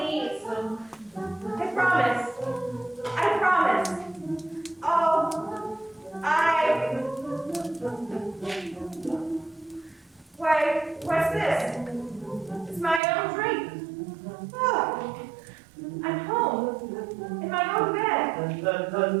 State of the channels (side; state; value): left; drops out; at 13.0 s